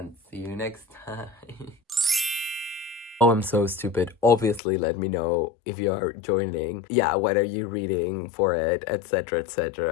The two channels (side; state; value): right; drops out; at 4.6 s